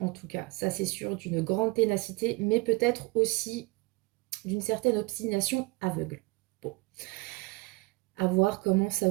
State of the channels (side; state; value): left; quieter; 24.0 dB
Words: en tout cas, ça c'est sûr, d'une grande ténacité, mais peut-être aussi d'une certaine obstination aveugle. Bon. À voir comment ça